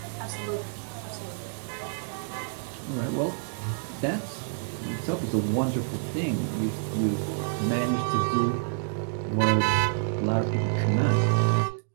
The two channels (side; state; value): left; silent; digital silence